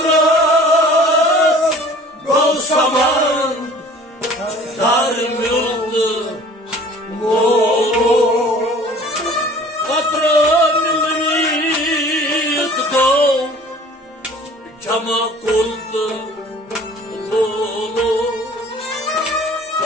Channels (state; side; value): normal; both; correlation 0.48